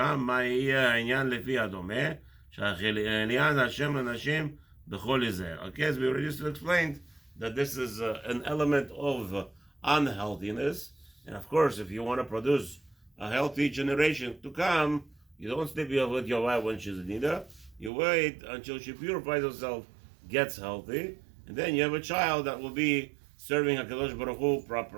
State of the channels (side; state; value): left; drops out; at 17.9 s